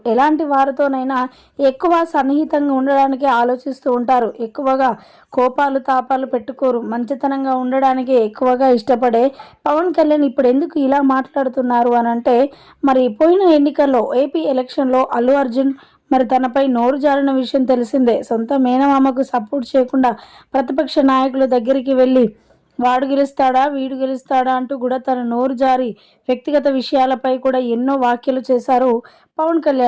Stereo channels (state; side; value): identical; both; correlation 1.00